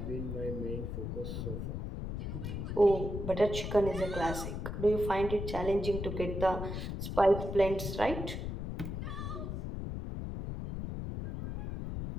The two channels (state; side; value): noise; left; rumble, 4 dB below the sound